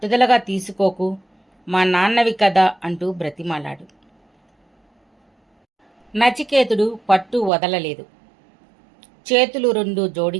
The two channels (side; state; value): left; drops out; at 7.5 s